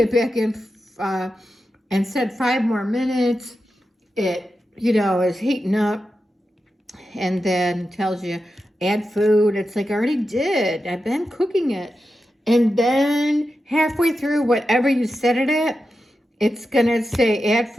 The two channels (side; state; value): both; normal; correlation 0.90